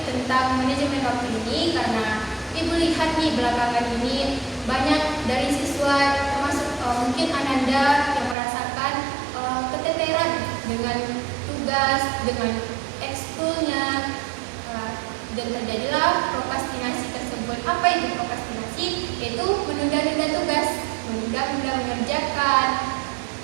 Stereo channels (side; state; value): left; drops out; at 8.3 s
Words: tentang manajemen waktu ini, karena Ibu lihat nih belakangan ini banyak dari siswa termasuk mungkin Ananda yang merasakan keteteran dengan tugas, dengan ekskulnya, dan terjadilah prokrastinasi tersebut. Apa itu prokrastinasi? Yaitu menunda-nunda tugas, menunda-nunda mengerjakan